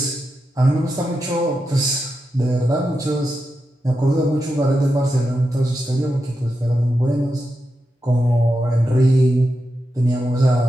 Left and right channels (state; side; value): normal; both; correlation 0.88